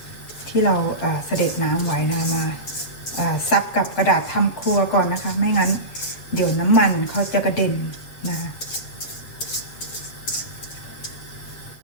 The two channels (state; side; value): late; right; 7.8 ms